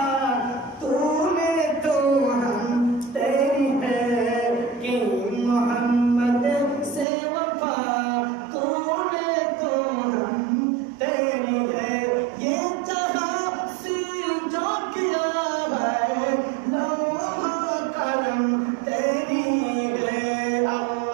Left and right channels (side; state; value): left; drops out; at 7.1 s